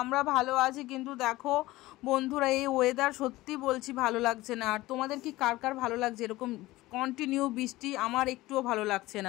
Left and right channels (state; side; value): quieter; right; 18.3 dB